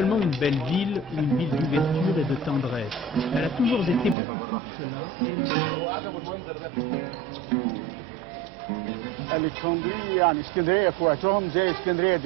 une belle ville ou une ville d'ouverture et de tendresse. Elle a toujours été beaucoup plus que cela et elle le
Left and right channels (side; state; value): left; drops out; at 4.2 s